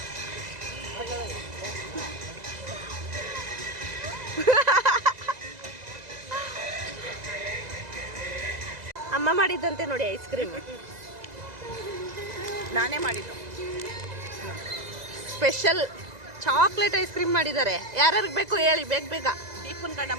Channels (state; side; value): late; left; 2.0 ms